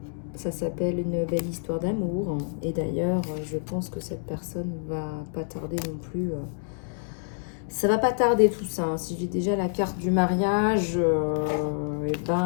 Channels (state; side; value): silent; right; digital silence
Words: Ça s'appelle une belle histoire d'amour. Et d'ailleurs, je pense que cette personne va pas tarder non plus. Ça va pas tarder tout ça. Si j'ai déjà la carte du mariage, on